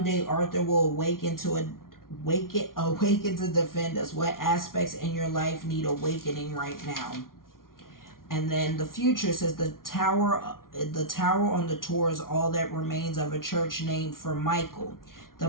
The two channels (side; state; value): right; late; 0.92 ms